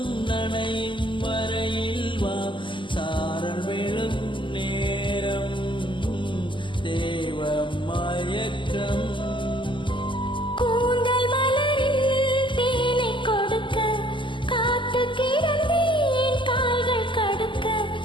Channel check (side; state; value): right; late; 0.24 ms